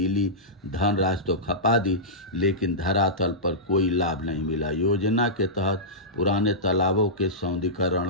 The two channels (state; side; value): normal; both; correlation -0.15